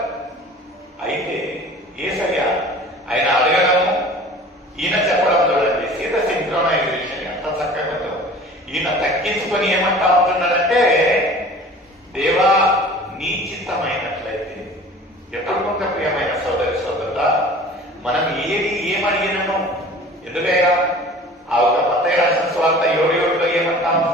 అయితే యేసయ్య ఆయన అడగడము, ఈయన చెప్పడం చూడండి, సీత సింక్రోనైజేషన్ ఎంత చక్కగా ఉందో. ఈయన తగ్గించుకొని ఏమంటా ఉంటున్నాడంటే, దేవా నీ చిత్తమైనట్లయితే. ఎప్పుడు కొంత ప్రియమైన సోదరి సోదరుడా, మనం ఏమడిగినాము, ఎందుకయ్యా ఆ ఒక మత్తయి రాసిన సువార్త 7:7లో ఏమంటా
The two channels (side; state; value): both; normal; correlation 0.44